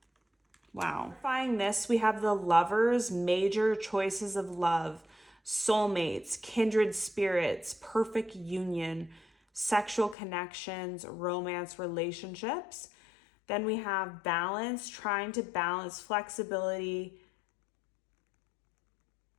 Wow. Clarifying this, we have the Lovers, major choices of love, soulmates, kindred spirits, perfect union, sexual connections, romance, relationships. Then we have balance, trying to balance flexibility,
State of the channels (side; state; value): right; drops out; at 10.2 s